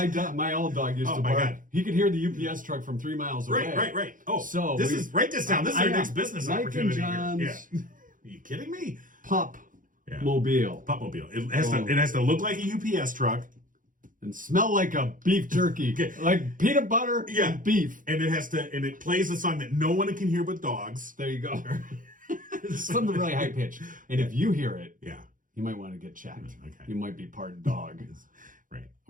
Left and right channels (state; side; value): late; left; 0.39 ms